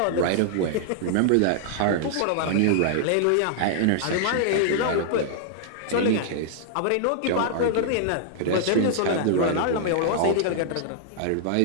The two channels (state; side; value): different; both; correlation -0.01